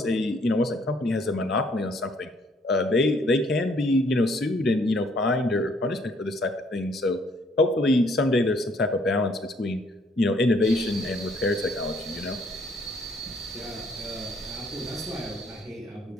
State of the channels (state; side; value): normal; both; correlation 0.65